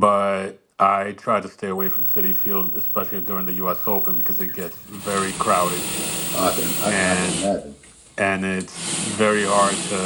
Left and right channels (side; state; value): both; identical; correlation 1.00